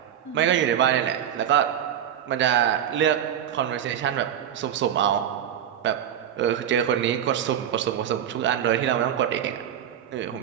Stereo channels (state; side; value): quieter; left; 10.0 dB